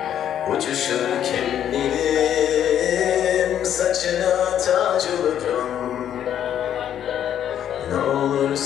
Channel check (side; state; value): right; quieter; 10.1 dB